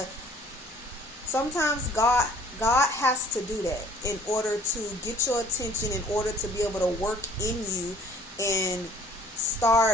sometimes God has to do that in order to get your attention, in order to be able to work in you and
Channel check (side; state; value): both; normal; correlation 0.54